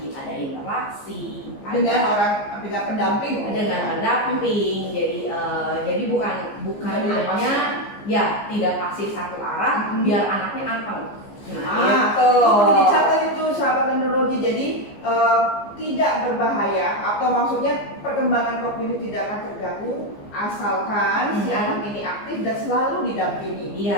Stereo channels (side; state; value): right; late; 15 ms